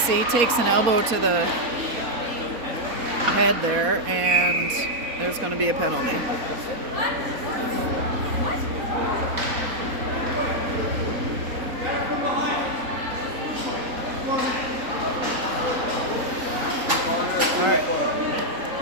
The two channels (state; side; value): late; left; 4.2 ms